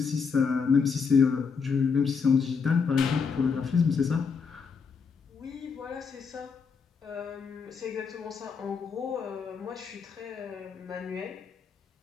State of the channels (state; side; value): quieter; right; 5.6 dB